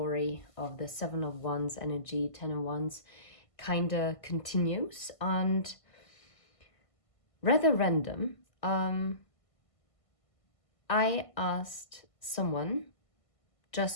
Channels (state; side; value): late; right; 1.5 ms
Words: of the Seven of Wands energy, Ten of Wands kinda continues. And rather random, I asked someone